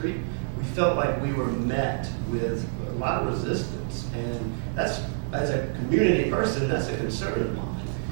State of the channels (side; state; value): left; silent; digital silence